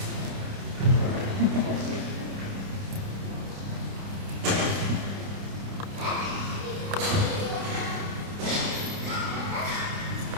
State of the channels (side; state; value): left; late; 30 ms